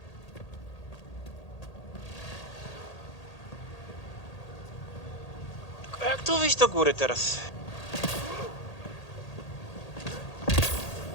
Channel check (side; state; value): right; late; 1.8 ms